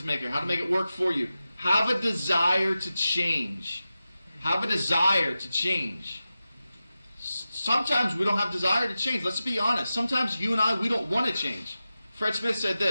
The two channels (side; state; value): both; inverted; correlation -0.93